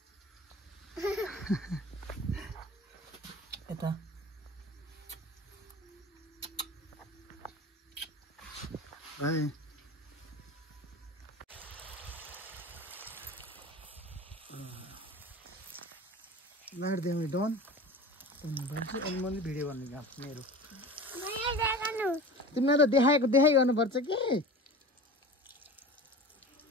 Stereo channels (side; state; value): both; normal; correlation 0.35